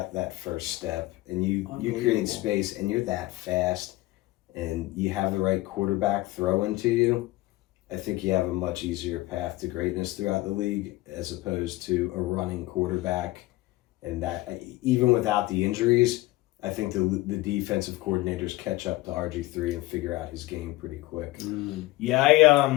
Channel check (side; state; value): right; quieter; 18.9 dB